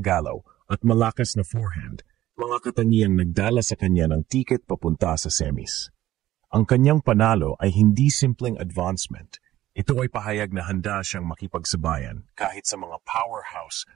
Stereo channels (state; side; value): quieter; left; 14.2 dB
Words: at malakas na forehand, mga katangiang nagdala sa kanya ng tiket papunta sa semis. Ang kanyang panalo ay hindi simpleng advancement. Ito ay pahayag na handa siyang makipagsabayan kahit sa mga powerhouse